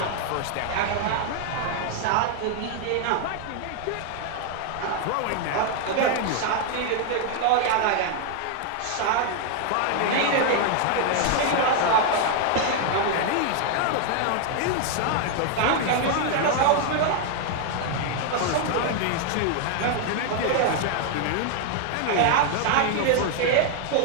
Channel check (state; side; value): different; both; correlation 0.00